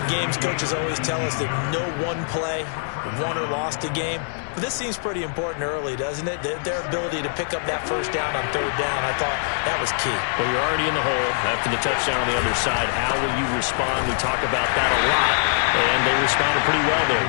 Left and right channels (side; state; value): right; silent; digital silence